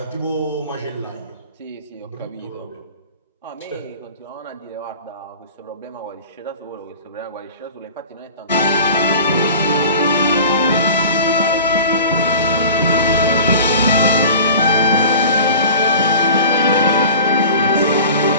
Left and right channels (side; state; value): both; inverted; correlation -0.39